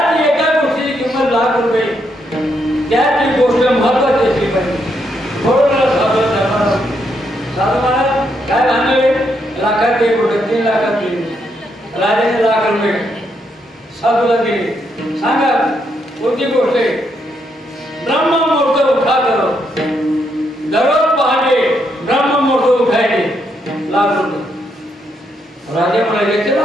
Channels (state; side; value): normal; both; correlation 0.77